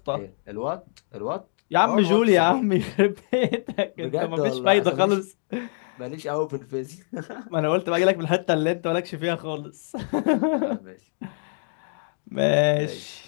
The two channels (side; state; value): right; silent; digital silence